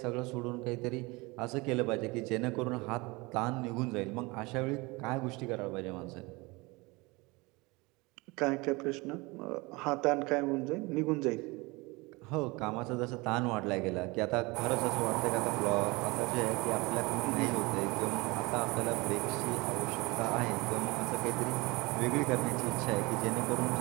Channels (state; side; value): quieter; left; 24.6 dB